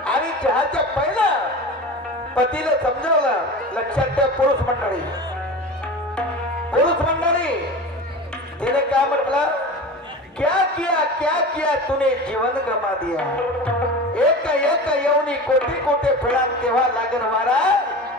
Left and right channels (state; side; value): normal; both; correlation 0.32